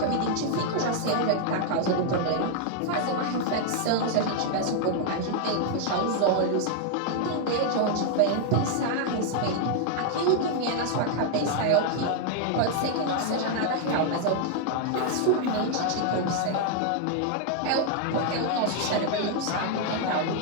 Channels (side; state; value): both; different; correlation 0.00